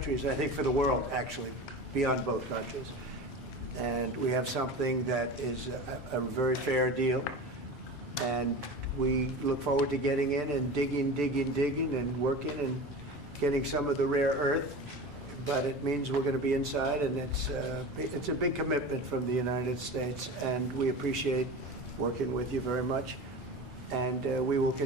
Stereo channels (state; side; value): normal; both; correlation 0.31